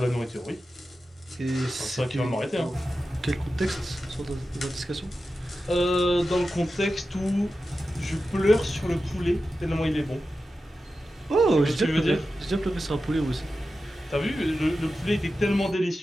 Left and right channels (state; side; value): normal; both; correlation 0.92